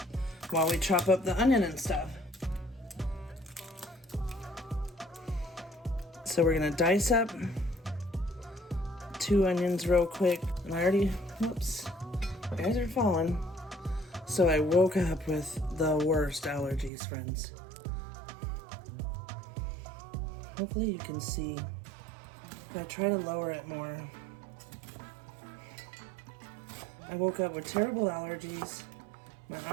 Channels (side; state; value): left; drops out; at 16.9 s